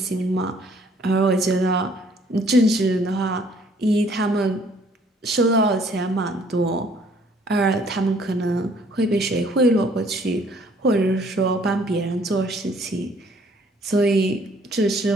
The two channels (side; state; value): both; normal; correlation 0.60